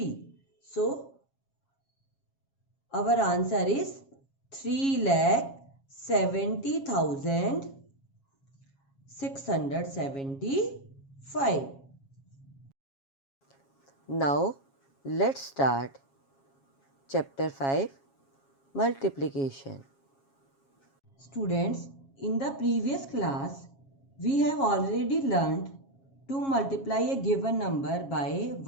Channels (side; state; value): right; late; 7.3 ms